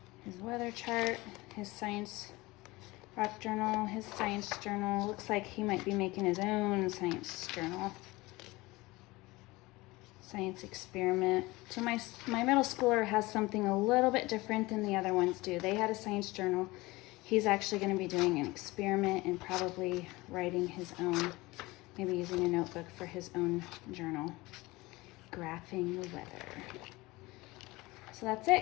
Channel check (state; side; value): quieter; right; 21.3 dB